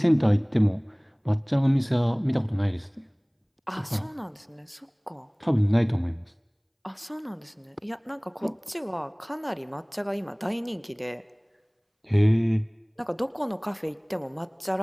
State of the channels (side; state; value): both; identical; correlation 1.00